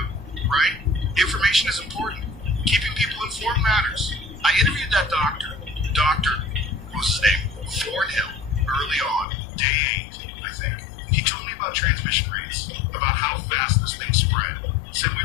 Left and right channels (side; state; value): right; drops out; at 9.2 s